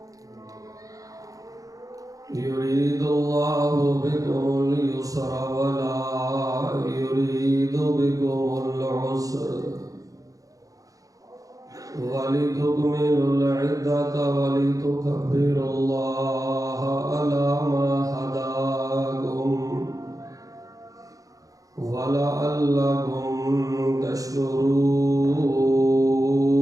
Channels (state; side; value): late; left; 0.17 ms